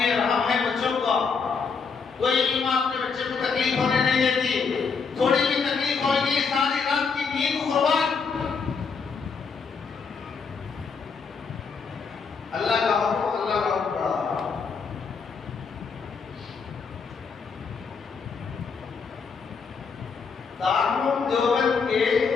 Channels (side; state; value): right; quieter; 5.4 dB